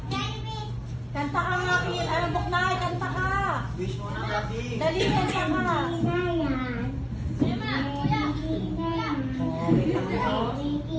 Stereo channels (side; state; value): both; identical; correlation 1.00